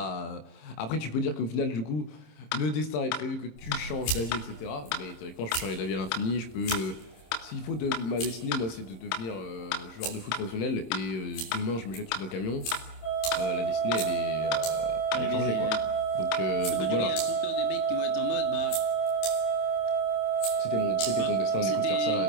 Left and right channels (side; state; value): right; late; 26 ms